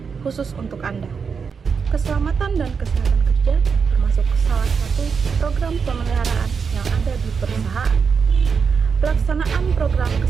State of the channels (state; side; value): quieter; left; 5.9 dB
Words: khusus untuk Anda. Keselamatan dan kesehatan kerja termasuk salah satu program pemeliharaan yang ada di perusahaan. Pelaksanaan program